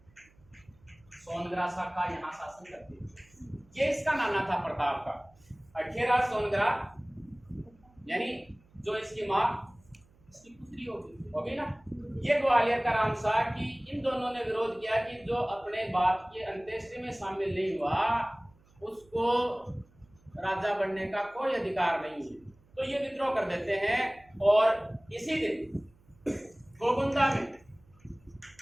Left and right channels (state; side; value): noise; right; hum, 30 dB below the sound